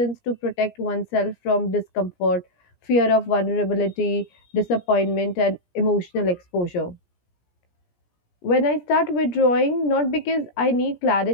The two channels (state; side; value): late; right; 17 ms